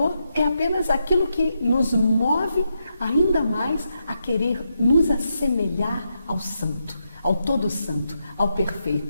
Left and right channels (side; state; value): both; inverted; correlation -0.83